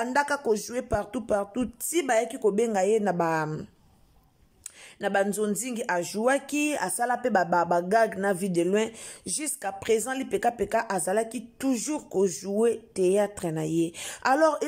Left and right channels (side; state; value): both; identical; correlation 1.00